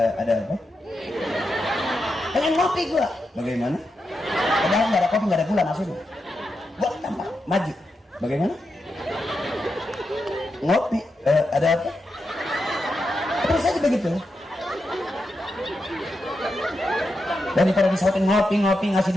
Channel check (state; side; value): normal; both; correlation 0.87